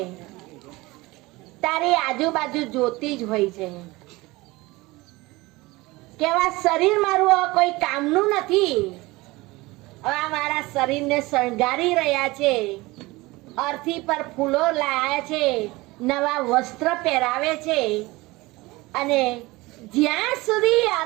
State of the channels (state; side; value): quieter; left; 21.4 dB